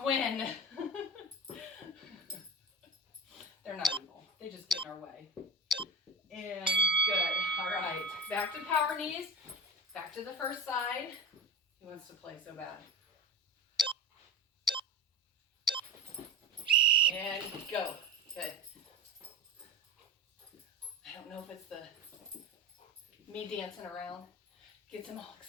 win. They're They're not evil. They just get in our way. And good. All right. Back to power knees. Back to the first side. He wants to play so bad. And go. Good. I don't know if it's the me dancing around. Gets him all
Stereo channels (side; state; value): both; normal; correlation 0.25